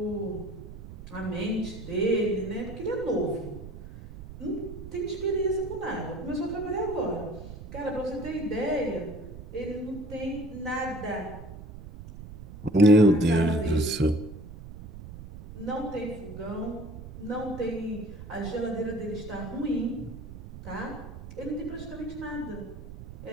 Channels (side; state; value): right; noise; rumble, 13 dB below the sound